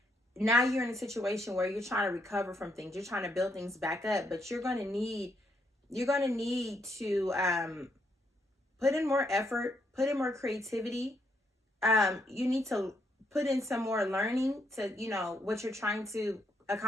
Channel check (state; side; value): normal; both; correlation 0.75